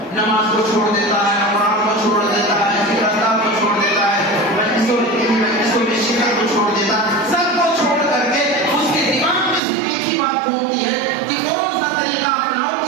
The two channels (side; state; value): left; drops out; at 9.6 s